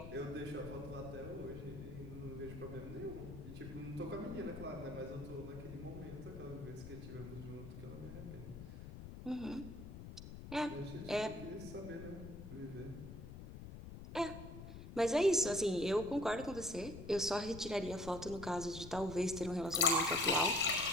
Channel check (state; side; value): noise; left; rumble, 11 dB below the sound